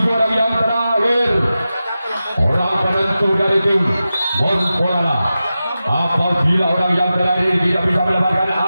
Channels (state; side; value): inverted; both; correlation -0.93